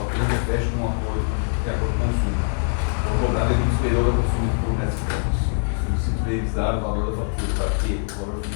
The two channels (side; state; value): right; silent; 63 dB below the other